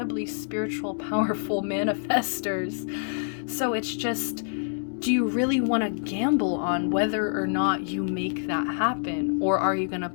spiritual, powerful manifestors. So it's just, do you really want to gamble on whether or not you make that happen? Or are you going to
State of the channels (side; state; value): right; silent; digital silence